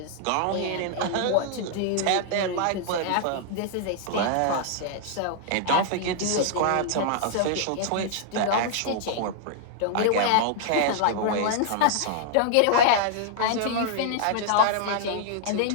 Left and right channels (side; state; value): both; different; correlation -0.01